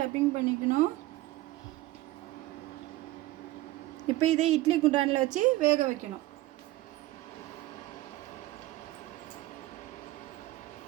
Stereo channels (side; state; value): left; quieter; 17.4 dB